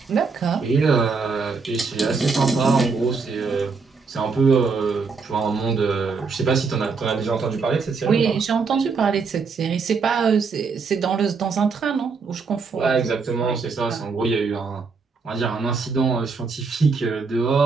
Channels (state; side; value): quieter; left; 4.8 dB